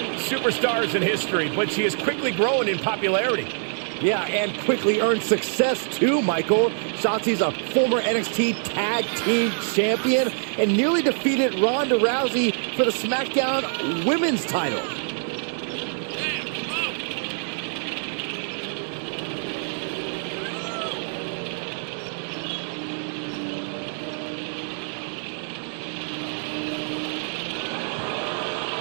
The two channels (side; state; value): left; silent; digital silence